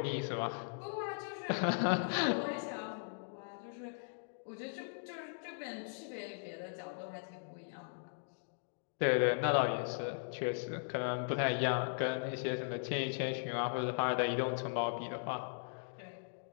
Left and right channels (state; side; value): silent; right; digital silence